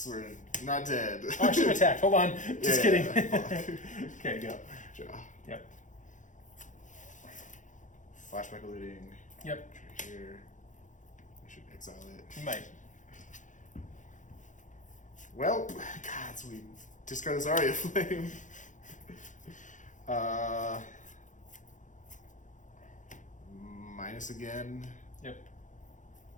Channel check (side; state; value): right; late; 0.36 ms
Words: we're not dead. Oh, I should have attacked. Hold on. Just kidding. Yeah. Okay, go. Draw. Yep. Flashback eluding. Yep. Here. I should exile it. You might. Well, God, so we discard this Aria Flame. Minus again. Yep.